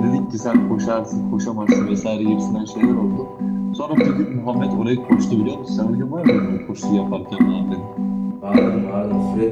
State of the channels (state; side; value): identical; both; correlation 1.00